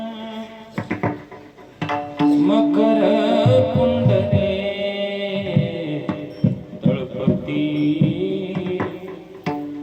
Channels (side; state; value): both; identical; correlation 1.00